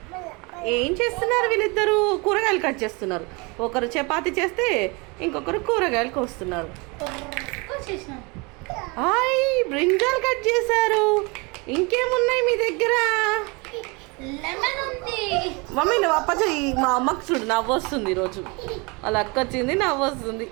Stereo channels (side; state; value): left; quieter; 28.3 dB